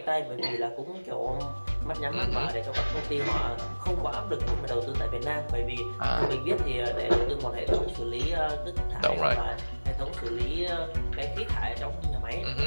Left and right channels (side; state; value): both; inverted; correlation -1.00